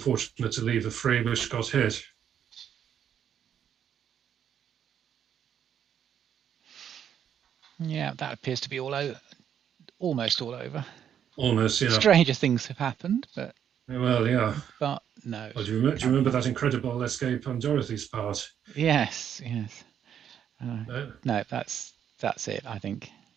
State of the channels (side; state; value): left; quieter; 9.0 dB